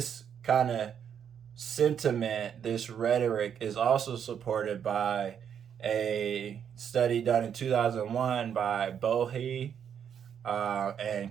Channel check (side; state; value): left; quieter; 8.3 dB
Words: kind of sentiment, this rhetoric, is also supported by a study done in 2001 by Bohe